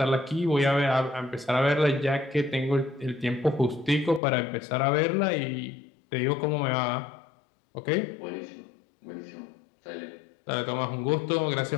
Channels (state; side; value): drops out; right; at 4.2 s